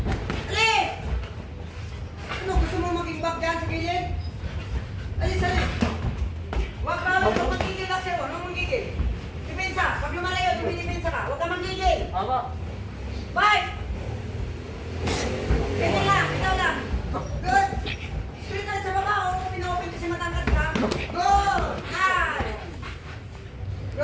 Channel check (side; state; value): both; identical; correlation 1.00